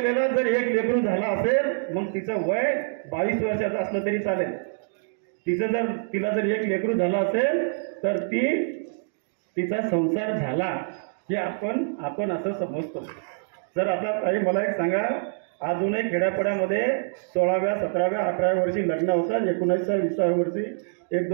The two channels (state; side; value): silent; left; digital silence